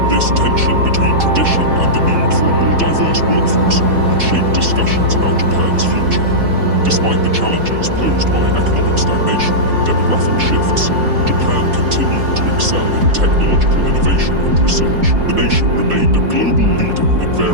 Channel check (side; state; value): left; late; 4.1 ms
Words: This tension between tradition and the need for a more diverse workforce would shape discussions about Japan's future. Despite the challenges posed by economic stagnation and demographic shifts, Japan continued to excel in technological innovation and research. The nation remained a global leader in